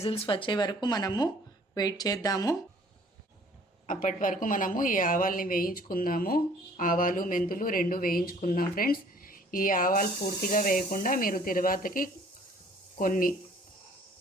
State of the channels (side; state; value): both; normal; correlation 0.55